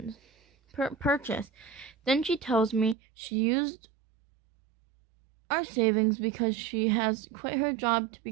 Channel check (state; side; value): drops out; left; at 3.0 s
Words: Then she tells me she used our savings because she has quit her job to